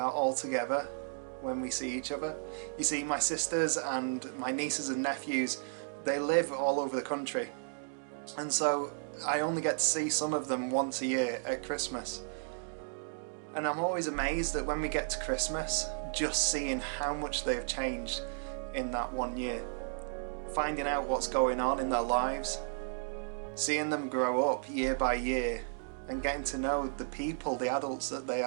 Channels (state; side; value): silent; left; digital silence